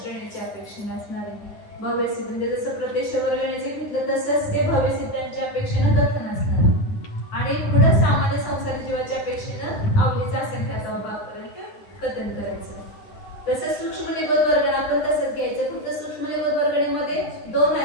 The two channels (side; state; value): right; late; 9.9 ms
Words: श्रेणीच्या अपेक्षेने असणारे भव्यसिद्ध म्हणजे जसं प्रत्यक्ष वर्गणीचे घेतलं तसंच ते भव्यसिद्धांच्या अपेक्षेनं कथन असणार. आणि पुढे सामान्य संसार जीवाच्या अपेक्षेनं अवलीचा असंख्यात्व भाग पर्यंत कथन करायचं. तसंच सूक्ष्म निबोध वर्गणा आपण तसंच घ्यायचं. फक्त सूक्ष्म निबोध वर्गणीमध्ये 2